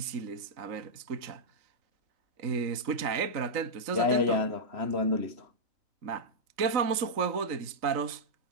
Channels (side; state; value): left; late; 3.9 ms